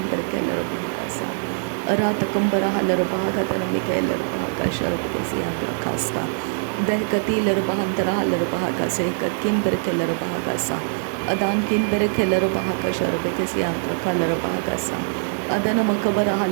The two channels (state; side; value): silent; left; 59 dB below the other